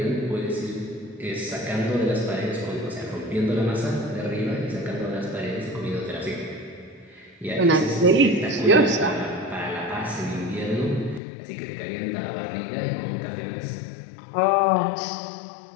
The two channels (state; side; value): drops out; right; at 11.2 s